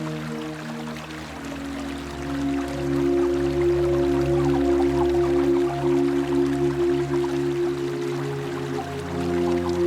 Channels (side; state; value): both; identical; correlation 1.00